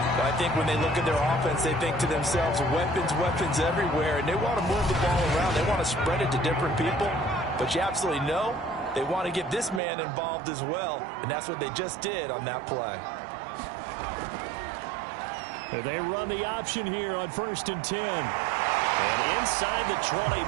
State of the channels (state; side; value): drops out; left; at 9.8 s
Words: I think when they look at their offense, they think to themselves, weapons everywhere. And they want to move the ball around. They want to spread it to different people. But you absolutely know they want to get this man involved as well, and that's what they just did on that play. They run the option here on 1st and 10. And inside the 20